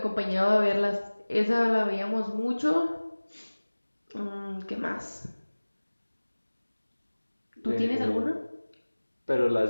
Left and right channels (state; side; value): inverted; both; correlation -1.00